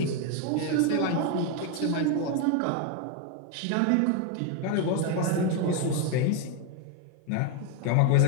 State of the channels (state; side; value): different; both; correlation 0.01